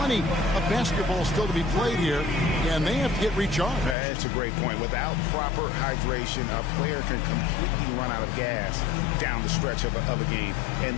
of basketball still to be played here, and they have to get recharged. That's a great point. Without proper hydration, a player can completely run out of gas down the stretch of a game. And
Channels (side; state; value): right; drops out; at 4.0 s